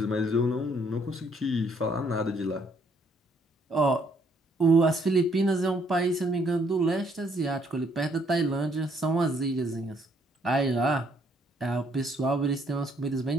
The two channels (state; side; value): normal; both; correlation 0.68